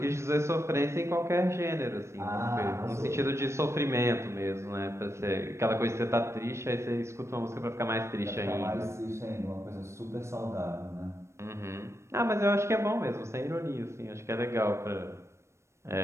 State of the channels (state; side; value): late; left; 0.13 ms